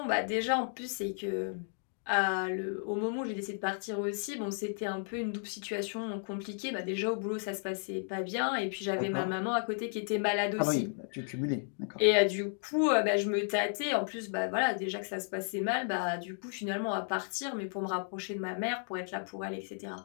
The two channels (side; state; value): right; silent; digital silence